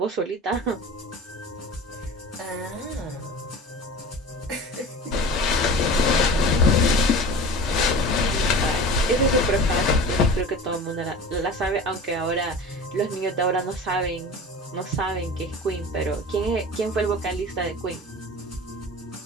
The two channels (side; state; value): both; normal; correlation 0.36